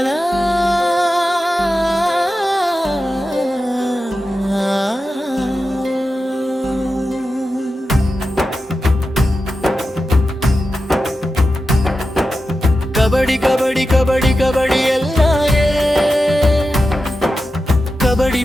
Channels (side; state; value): both; normal; correlation 0.91